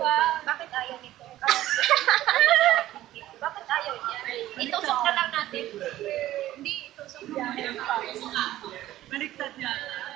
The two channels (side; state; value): left; quieter; 14.5 dB